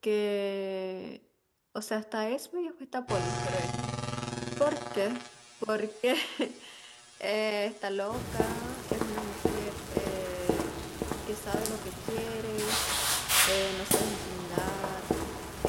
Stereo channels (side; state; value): both; identical; correlation 1.00